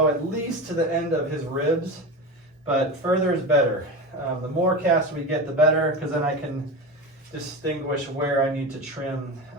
at least to the end of his ribs, but further is better. The more cast we get, the better, because then I can distinguish where I need to trim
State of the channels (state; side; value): normal; both; correlation 0.25